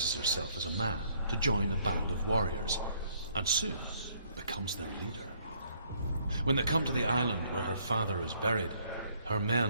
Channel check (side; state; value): both; inverted; correlation -0.66